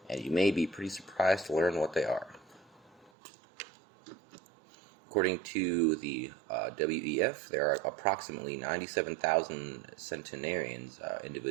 and you may be pretty surprised to learn what they are. According to the WEF, there are approximately 97,000 centenarians,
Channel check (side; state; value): left; drops out; at 3.1 s